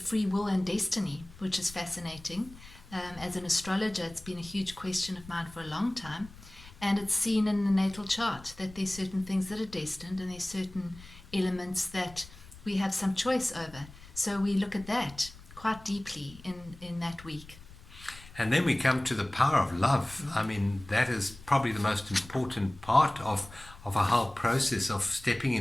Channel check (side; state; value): left; noise; rumble, 19 dB below the sound